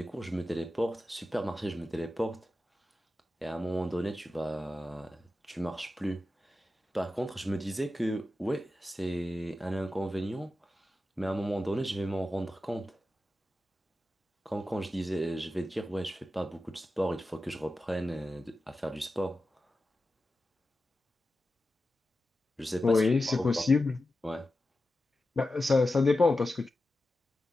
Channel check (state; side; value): normal; both; correlation 0.92